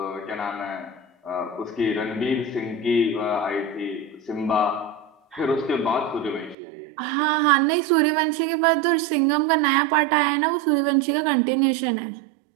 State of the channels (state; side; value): drops out; left; at 6.6 s